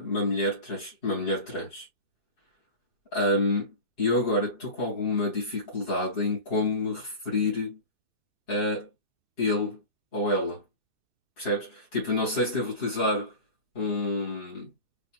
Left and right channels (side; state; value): right; late; 2.6 ms